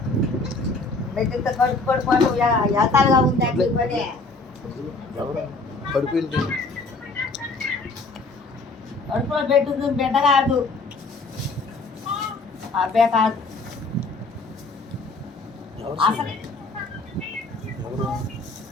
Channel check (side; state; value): right; quieter; 3.5 dB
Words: మెట్టితో కడుపు పడిపోవడం ఎతాలుగా ఉంది అంటే పని. కడుపులో పెట్టుంది, బిడ్డ కాదు, అబ్బే కాదు.